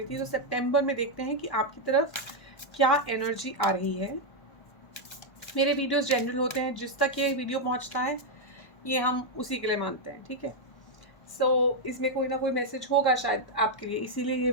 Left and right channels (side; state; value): right; late; 1.1 ms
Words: थी। तो सितंबर में देखते हैं कि आपकी तरफ क्या एनर्जी आ रही है। मेरे वीडियोस जनरल होते हैं, जिस तक ये वीडियो पहुंचता है ये हम उसी के लिए मानते हैं, ठीक है। इसमें कोई ना कोई मैसेज होगा शायद आपके लिए, इसीलिए ये